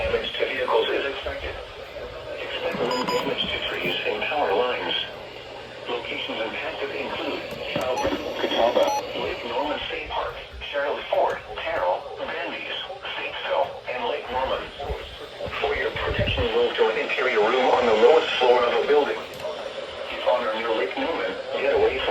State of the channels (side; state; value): both; identical; correlation 1.00